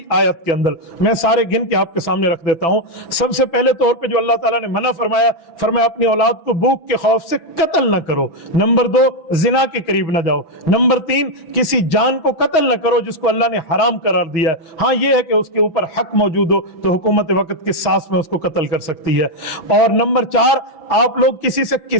آیت کے اندر میں سارے گن کے آپ کے سامنے رکھ دیتا ہوں۔ سب سے پہلے طور پہ جو اللہ تعالیٰ نے منع فرمایا، فرمایا اپنی اولاد کو بھوک کے خوف سے قتل نہ کرو۔ نمبر 2 زنا کے قریب نہ جاؤ۔ نمبر 3 کسی جان کو قتل نہ کرو جس کو اللہ نے حرام قرار دیا ہے۔ ہاں یہ ہے کہ اس کے اوپر حق موجود ہو تو حکومت وقت کی سانس میں اس کو قتل کر سکتی ہے۔ اور نمبر 4 آپ لوگ کسی سے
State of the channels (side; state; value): right; late; 6.0 ms